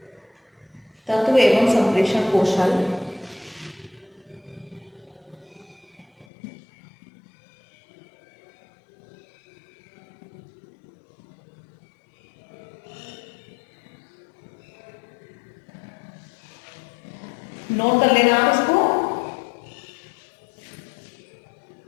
तत्व एवं संप्रेषण कौशल, नोट कर लेना आप इसको।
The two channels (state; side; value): drops out; right; at 6.2 s